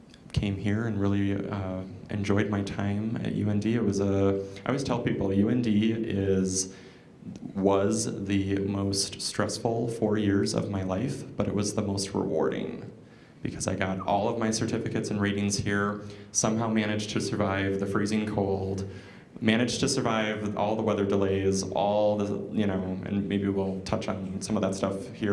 came here and really enjoyed my time at UND. I always tell people UND was the most stressful 4 years of my life, but it was the most rewarding, because I got all of my certificates and ratings here, somehow managed to survive the freezing cold, managed to survive all the weather delays, all the, and maybe we'll touch on some of that stuff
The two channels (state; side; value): identical; both; correlation 1.00